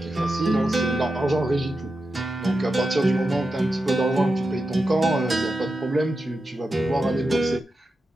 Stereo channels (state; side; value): normal; both; correlation 0.90